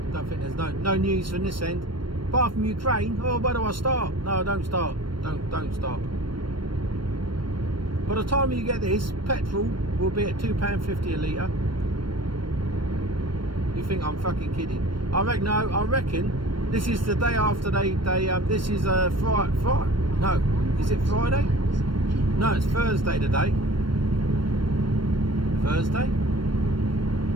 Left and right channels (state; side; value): late; left; 0.72 ms